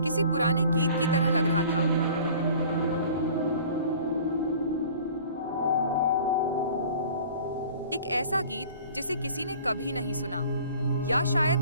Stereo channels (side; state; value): both; inverted; correlation -0.47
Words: किसी पुराने गीत की तरह लग रहा था। एक ऐसा गीत जिसे किसी ने कभी नहीं सुना, या